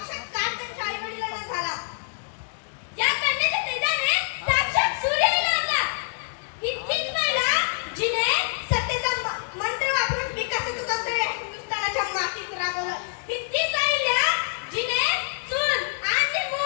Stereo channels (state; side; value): silent; right; digital silence